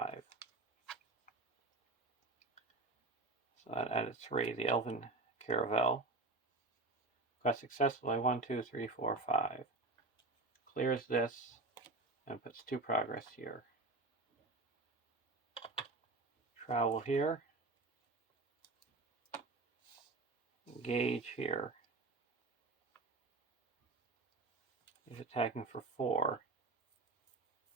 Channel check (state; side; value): quieter; left; 3.2 dB